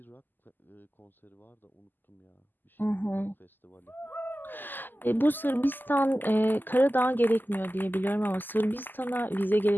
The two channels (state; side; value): late; right; 0.089 ms